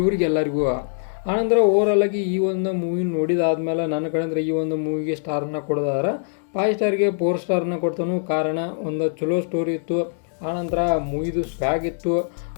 ಆನಂತರ ಓವರಾಲಾಗಿ ಈ ಒಂದು ಮೂವಿ ನೋಡಿದಾದ್ಮೇಲೆ ನನ್ನ ಕಡೆಯಿಂದ ಈ ಒಂದು ಮೂವಿಗೆ ಸ್ಟಾರನ್ನ ಕೊಡೋದಾದ್ರೆ 5 ಸ್ಟಾರ್ಗೆ 4 ಸ್ಟಾರನ್ನ ಕೊಡ್ತಾನು. ಕಾರಣ ಒಂದು ಚಲೋ ಸ್ಟೋರಿ ಇತ್ತು, ಆನಂತರ ಮೂವಿದು ಸ್ವ್ಯಾಗ್ ಇತ್ತು,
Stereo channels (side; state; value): right; silent; digital silence